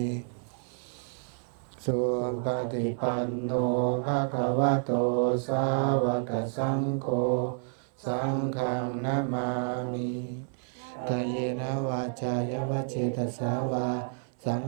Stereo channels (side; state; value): left; silent; 58 dB below the other